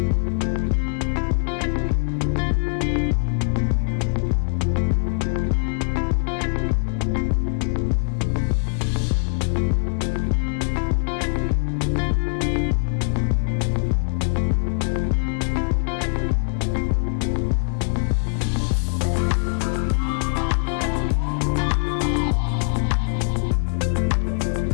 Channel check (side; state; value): right; silent; 64 dB below the other